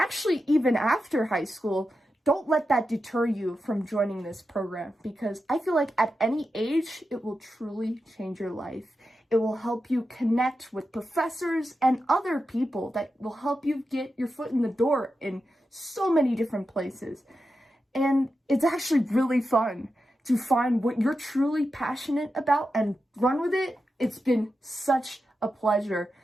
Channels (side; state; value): both; normal; correlation 0.89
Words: even after high school, don't let that deter you from joining this program, because I feel like at any age, it will truly change your life. It will help you connect with professors and other people that will help you get your foot in the door in so many different places. And it's actually really fun to find what you're truly passionate about and run with it. It's been such a pleasure